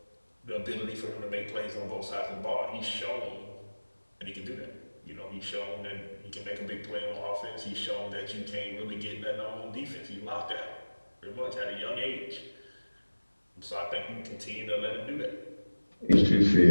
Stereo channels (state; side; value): inverted; both; correlation -1.00